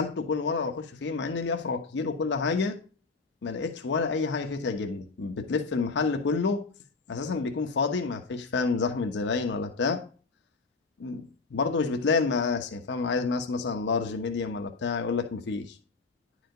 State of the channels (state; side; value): quieter; right; 4.1 dB